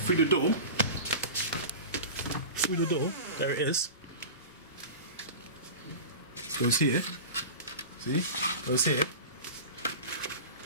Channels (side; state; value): both; inverted; correlation -0.33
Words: the door. Through the door, there it is. Goes here. See? Goes here.